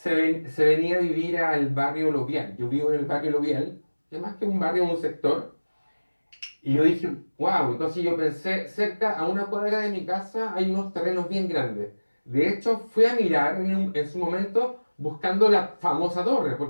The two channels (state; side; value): inverted; both; correlation -1.00